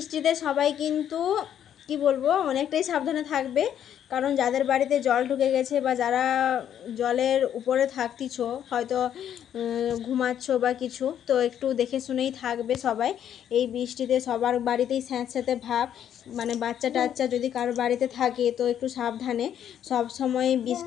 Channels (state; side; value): quieter; right; 9.8 dB